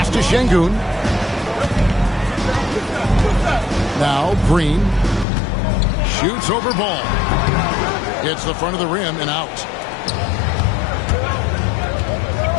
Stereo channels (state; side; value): drops out; right; at 5.2 s